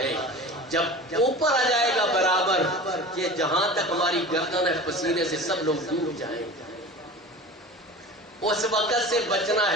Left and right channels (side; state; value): both; normal; correlation 0.36